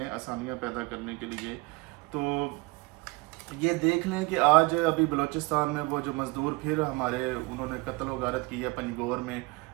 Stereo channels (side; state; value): left; quieter; 25.1 dB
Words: آسانیاں پیدا کرنے کے لیے۔ تو یہ دیکھ لیں کہ آج ابھی بلوچستان میں وہ جو مزدور پھر ہمارے انہوں نے قتل و غارت کی ہے پنجگور میں،